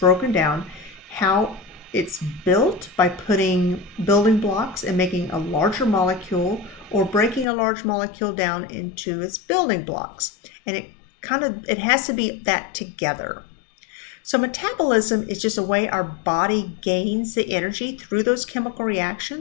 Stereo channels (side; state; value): right; drops out; at 7.5 s